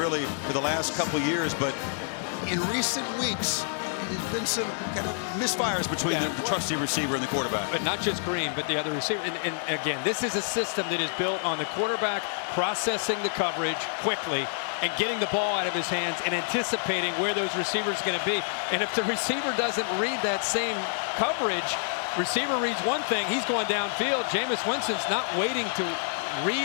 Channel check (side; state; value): right; silent; digital silence